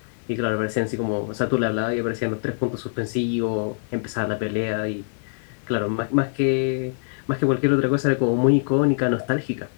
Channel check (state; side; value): silent; right; digital silence